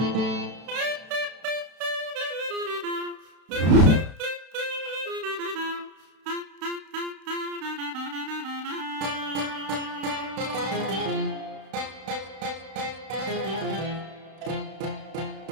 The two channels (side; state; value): left; late; 32 ms